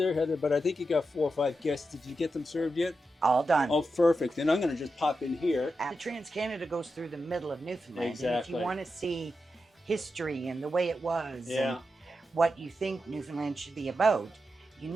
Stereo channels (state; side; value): normal; both; correlation 0.88